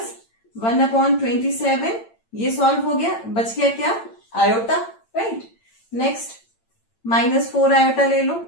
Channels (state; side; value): late; right; 8.9 ms